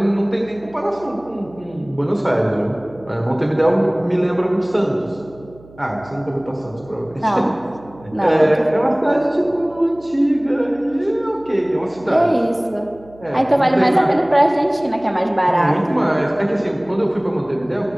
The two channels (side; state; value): right; noise; hum, 23 dB below the sound